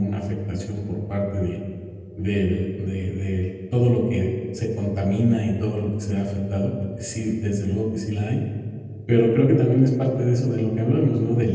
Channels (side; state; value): both; identical; correlation 1.00